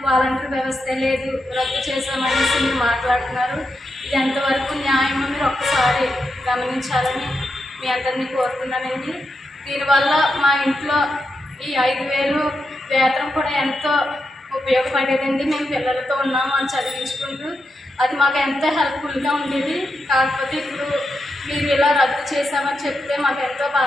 వాలంటీర్ వ్యవస్థే లేదు, రద్దు చేసామనేసి మీరు మాట్లాడుతున్నారు. ఇది ఎంతవరకు న్యాయమో మీరు ఒక్కసారి గమనించాలని మీ అందరినీ కోరుతున్నానండి. దీనివల్ల మా ఇంట్లో ఈ 5,000 వేతనం కూడా ఎంతో ఉపయోగపడేదండి. మేము పిల్లలతో ఉన్నాము అని చదివించుకుంటూ అది మాకు ఎంతో హెల్ప్ఫుల్గా ఉండేది. కాకపోతే ఇప్పుడు మీరు ఇలా రద్దు చేశామని చెప్తే మాకు ఎంతో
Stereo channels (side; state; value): both; normal; correlation 0.86